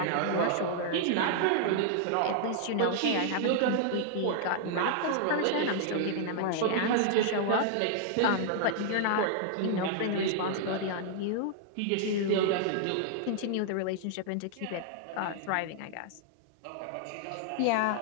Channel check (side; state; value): both; different; correlation -0.01